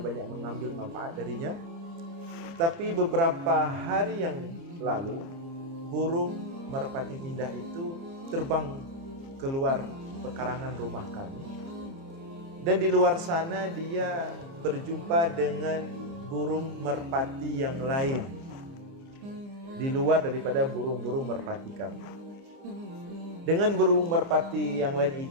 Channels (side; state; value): left; late; 29 ms